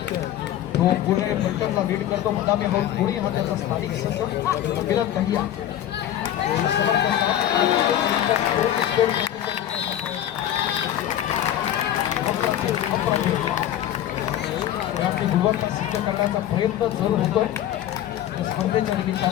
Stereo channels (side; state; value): right; quieter; 11.7 dB